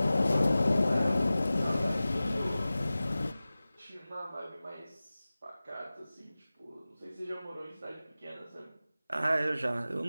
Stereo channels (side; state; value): both; inverted; correlation -0.97